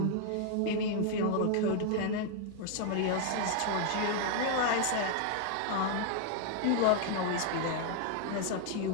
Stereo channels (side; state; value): both; different; correlation 0.00